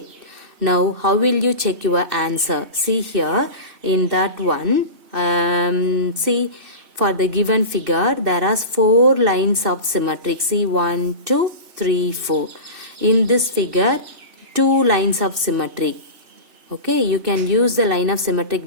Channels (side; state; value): left; late; 2.6 ms